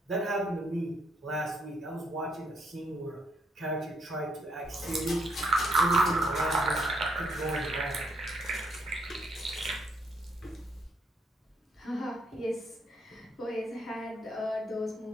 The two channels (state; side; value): normal; both; correlation 0.72